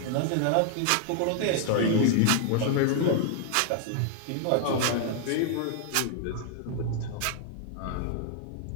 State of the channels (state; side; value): different; both; correlation 0.00